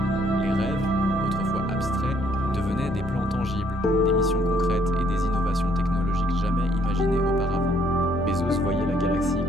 Les rêves, autrefois abstraits, devenaient des plans tangibles, des missions concrètes et des innovations technologiques jamais imaginées auparavant. Bezos voyait la galaxie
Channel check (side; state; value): both; normal; correlation 0.67